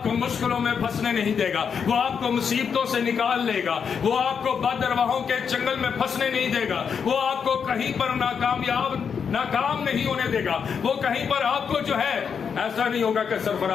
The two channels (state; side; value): quieter; right; 6.7 dB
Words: کو مشکلوں میں پھنسنے نہیں دے گا، وہ آپ کو مصیبتوں سے نکال لے گا، وہ آپ کو بدرواہوں کے چنگل میں پھنسنے نہیں دے گا، وہ آپ کو کہیں پر ناکام نہیں ہونے دے گا، وہ کہیں پر آپ کو جو ہے ایسا نہیں ہوگا کہ